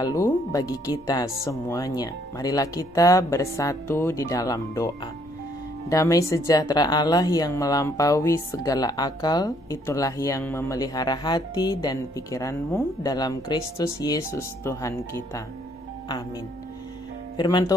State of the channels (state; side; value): normal; both; correlation 0.67